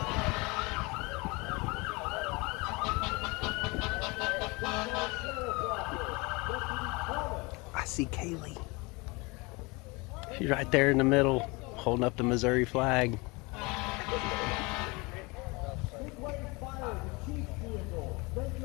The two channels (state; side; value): quieter; right; 26.3 dB